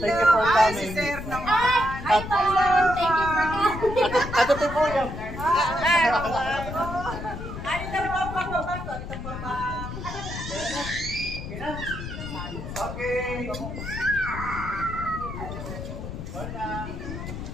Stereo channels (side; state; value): left; noise; rumble, 8 dB below the sound